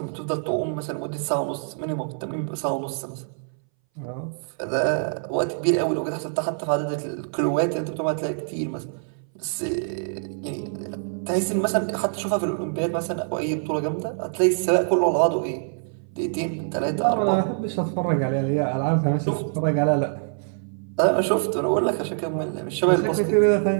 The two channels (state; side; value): silent; left; 61 dB below the other